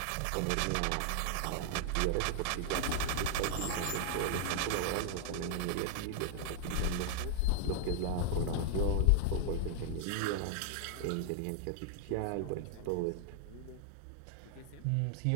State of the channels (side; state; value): both; different; correlation 0.00